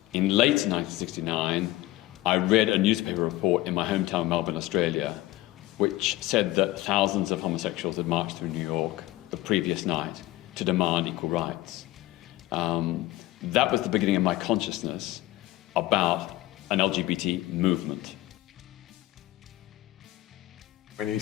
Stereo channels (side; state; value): right; quieter; 17.1 dB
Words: in late 1969, I read a newspaper report in my hometown, Melbourne, Australia, which said that thousands of homosexuals had marched through New York the previous night to demand equal rights. That was the beginning of my consciousness about an LGBT movement. When he